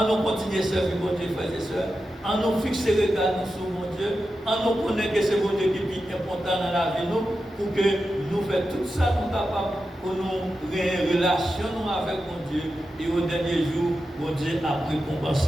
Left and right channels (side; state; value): both; normal; correlation 0.90